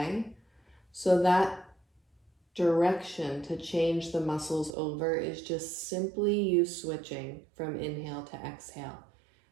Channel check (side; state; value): left; drops out; at 4.7 s